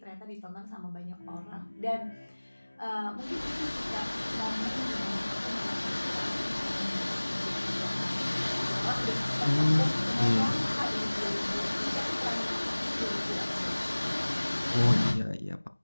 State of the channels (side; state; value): both; inverted; correlation -1.00